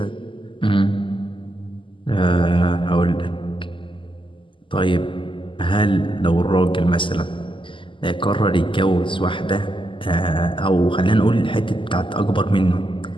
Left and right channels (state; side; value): late; right; 0.25 ms